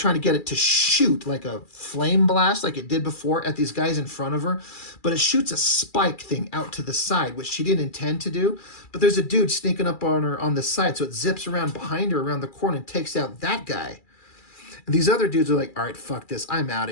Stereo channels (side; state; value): right; late; 2.3 ms